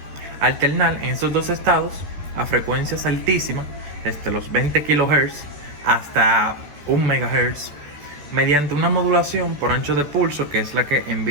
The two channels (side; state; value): left; late; 14 ms